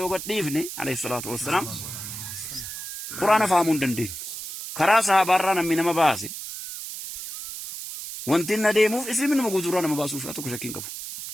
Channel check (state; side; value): noise; right; hiss, 8 dB below the sound